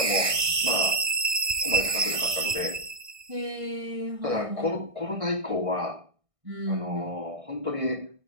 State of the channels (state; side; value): late; left; 1.6 ms